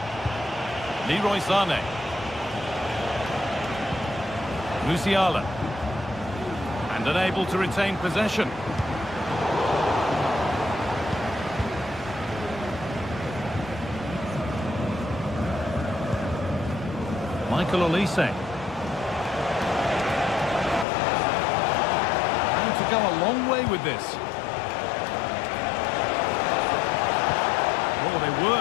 Leroy Sané. Musiala. And unable to retain possession. Michael Olise. And to go a long way with this. Oh, they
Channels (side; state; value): right; drops out; at 20.9 s